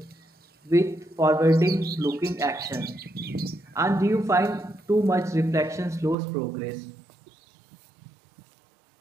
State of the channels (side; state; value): left; drops out; at 6.2 s